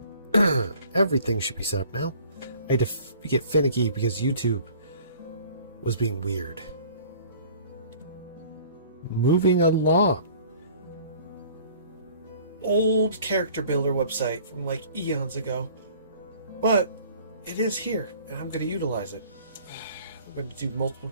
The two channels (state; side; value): inverted; both; correlation -0.51